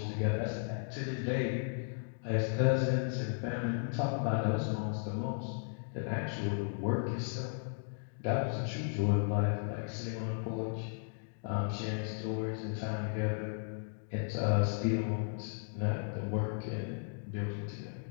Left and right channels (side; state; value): right; silent; digital silence